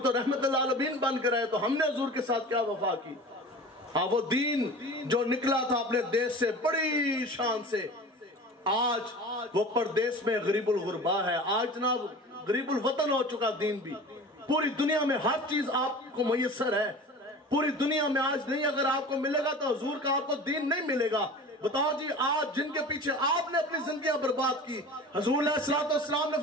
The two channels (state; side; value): normal; both; correlation 0.37